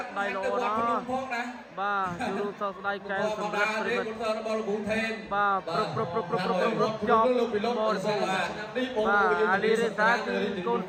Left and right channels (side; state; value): both; identical; correlation 1.00